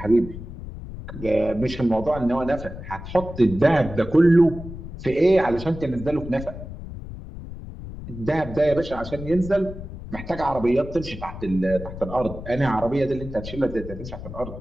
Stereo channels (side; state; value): left; noise; rumble, 11 dB below the sound